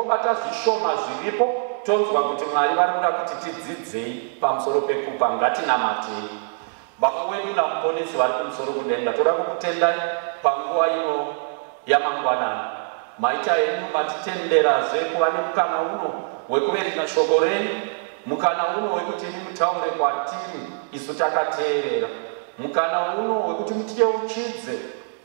zvishoma zviripo, tonzwa kuti Mwari vari kuda kuti tidzidzei pamusoro pekupa. Ngatinamatei. Baba wedu namuponesi vari kumusoro kudenga, toda kukutendai panguva ino yamangwanani. Maita henyu matitenderazve kuva nemukana uno wekuverenga shoko renyu, mukana uno wekuti imi mutaure kwatiri isu takateerera, mukana uno wekuti mutiyeuchidze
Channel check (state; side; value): silent; left; digital silence